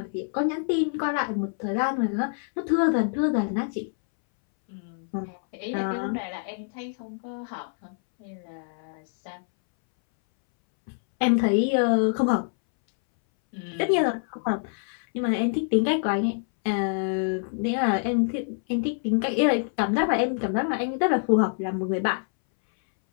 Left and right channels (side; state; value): right; silent; 61 dB below the other